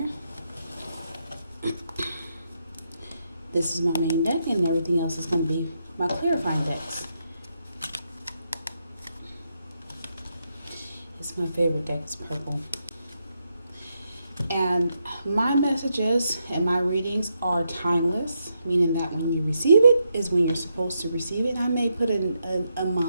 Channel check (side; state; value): both; inverted; correlation -0.81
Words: This is my main deck, and everything else is going to be my clarifying decks. It's my favorite deck, it's purple. And my messages and my readings are timeless, meaning that when you receive it is when you're supposed to receive it. I may put a